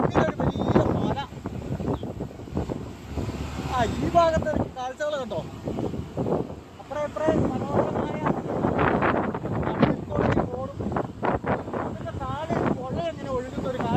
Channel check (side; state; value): both; identical; correlation 1.00